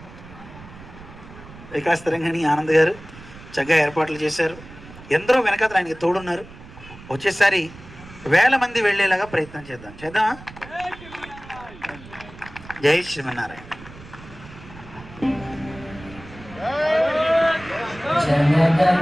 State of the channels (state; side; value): noise; right; rumble, 18 dB below the sound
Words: వికాస్ తరంగిణి ఆనంద్ గారు చక్కగా ఏర్పాట్లు చేశారు. ఎందరో వెనకాతలు ఆయనకి తోడున్నారు. వచ్చేసారి 1000 మంది వెళ్ళేలాగా ప్రయత్నం చేద్దామా? జై శ్రీమన్నారాయణ.